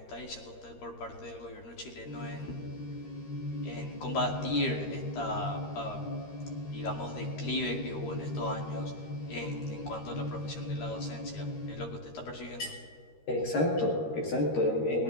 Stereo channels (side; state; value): right; late; 13 ms